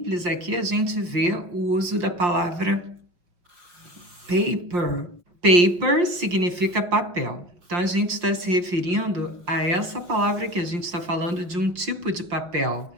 aqui, a gente vê o uso da palavra paper. Paper significa papel. Então, a gente está se referindo a essa palavra que a gente está falando de um tipo de papel.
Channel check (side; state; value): left; late; 5.7 ms